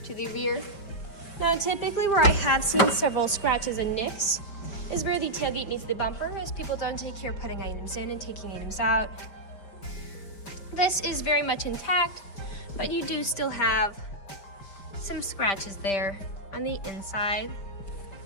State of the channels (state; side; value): late; right; 5.1 ms